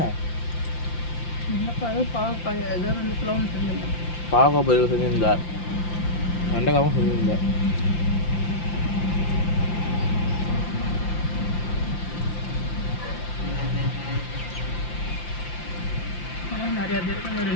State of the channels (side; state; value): right; late; 5.8 ms